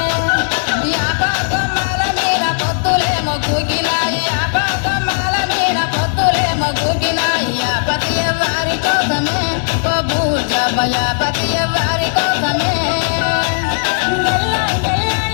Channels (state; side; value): silent; right; 69 dB below the other